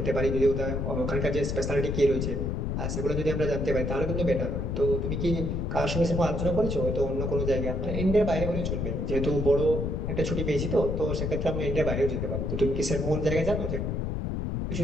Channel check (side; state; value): left; noise; rumble, 1 dB below the sound